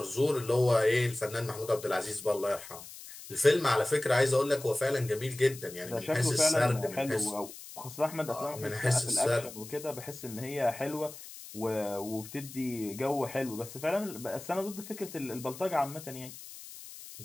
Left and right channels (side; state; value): left; noise; hiss, 14 dB below the sound